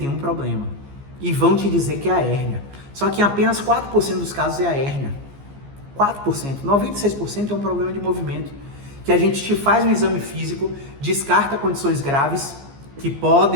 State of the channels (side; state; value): left; late; 15 ms